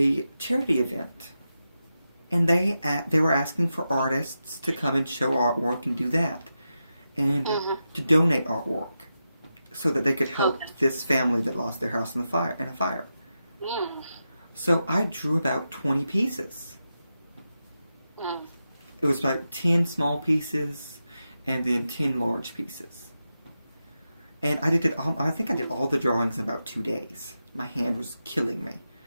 charity event, and they were asking for artists to come and show artwork and do that, and Mm-hmm. to donate artwork, so that they could help Okay. this family that lost their house in a fire. Mm. So I drew about 20 pieces. Mm. It was about 10 small pieces and then 10 large pieces. And I think I did all the drawings in about 2 days. My hand was killing me.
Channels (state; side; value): inverted; both; correlation -0.89